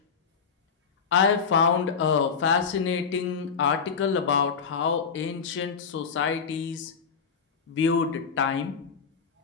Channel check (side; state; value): right; quieter; 5.9 dB